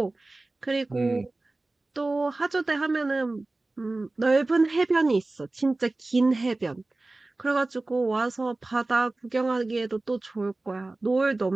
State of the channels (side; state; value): left; quieter; 3.0 dB